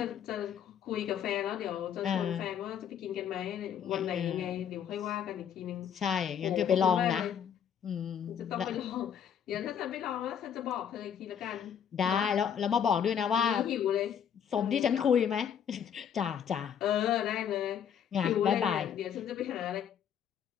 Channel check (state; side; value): quieter; right; 8.5 dB